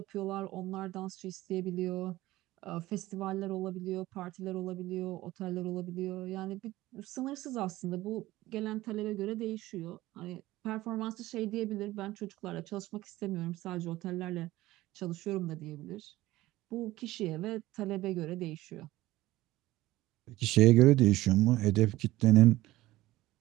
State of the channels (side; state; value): left; quieter; 17.2 dB